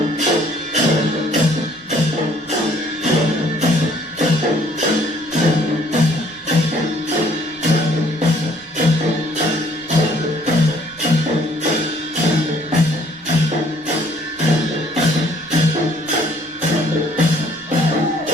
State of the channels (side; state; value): right; noise; rumble, 30 dB below the sound